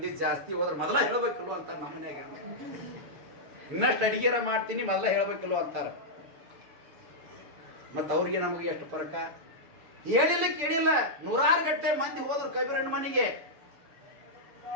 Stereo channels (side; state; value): left; late; 6.9 ms